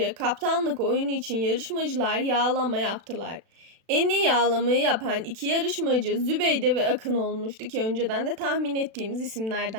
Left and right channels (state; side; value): late; left; 36 ms